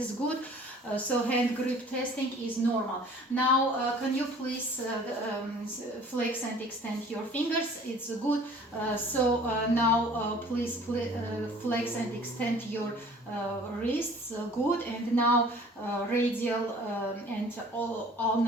good. So hand grip testing is normal. Now can you please flex and extend your fingers? It's good. So now please flex and extend your wrists. Good. And now radial and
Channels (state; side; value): normal; both; correlation 0.49